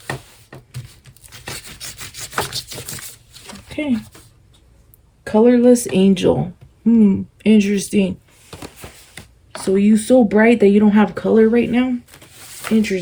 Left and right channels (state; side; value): identical; both; correlation 1.00